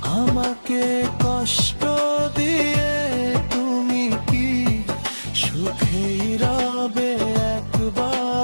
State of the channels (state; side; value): inverted; both; correlation -1.00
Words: আমাকে কষ্ট দিয়ে তুমি কি সুখেই রবে